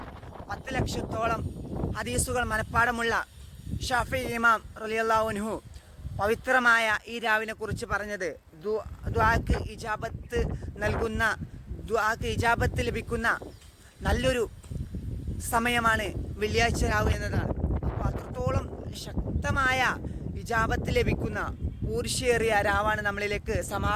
10 ലക്ഷത്തോളം ഹദീസുകൾ മനഃപ്പാടമുള്ള ഷാഫി ഇമാം റളിയല്ലാഹു അൻഹു പവിത്രമായ ഈ രാവിനെ കുറിച്ച് പറഞ്ഞത് ദുആക്ക് ഇജാബത്ത് നൽകുന്ന, ദുആക്ക് ഇജാബത്ത് ലഭിക്കുന്ന നല്ലൊരു സമയമാണ് വെള്ളിയാഴ്ച രാവ് എന്നതാണ്. അപ്പോൾ അത്രത്തോളം ശക്തമായ ഇജാബത്ത് ലഭിക്കുന്ന ഊർഷ്യേറിയ രാവാണ് നമ്മളിലേക്ക്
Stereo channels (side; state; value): both; identical; correlation 1.00